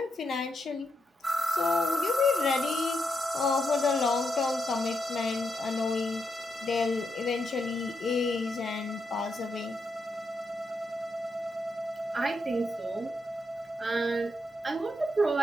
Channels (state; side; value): normal; both; correlation 0.83